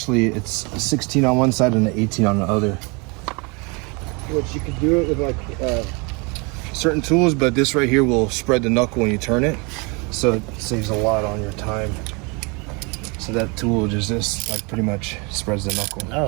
it's a 16 on one side and an 18 on the other. Which you can do it with like certain tools, but this right here will spread the knuckle when you turn it. So it saves a lot on your time. So that tool just like pretty much spreads the knuckle.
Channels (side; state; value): left; quieter; 30.2 dB